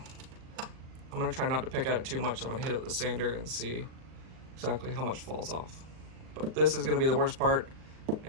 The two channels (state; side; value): late; left; 38 ms